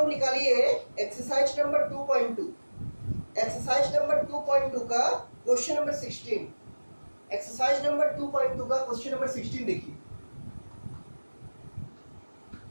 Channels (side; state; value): both; inverted; correlation -1.00